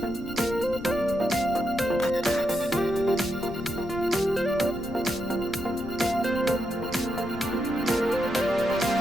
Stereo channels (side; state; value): left; noise; rumble, 13 dB below the sound